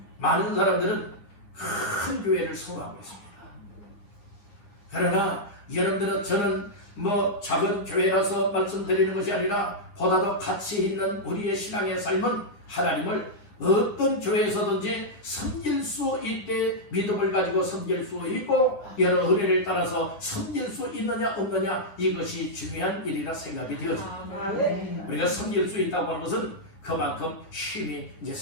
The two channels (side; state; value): right; late; 10 ms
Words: 많은 사람들은 큰 교회를 소망하고 있습니다. 그러나 여러분들은, 저는 작은 교회라서 말씀드리는 것이 아니라 보다 더 가치 있는 우리의 신앙의 삶은 하나님을 어떤 교회에서든지 섬길 수 있게 믿음을 가지고 섬길 수 있고, 여러 은혜를 따라서 섬길 수 있느냐 없느냐, 이것이 중요한 일이라 생각이 되어집니다. 우리가 섬길 수 있다고 하는 것은 그만큼 힘이 이제